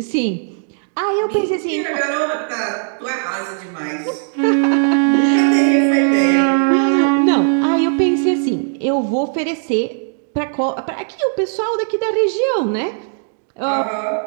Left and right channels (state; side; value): silent; left; digital silence